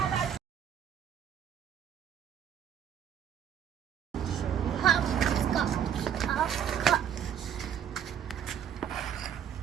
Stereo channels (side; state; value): left; quieter; 9.0 dB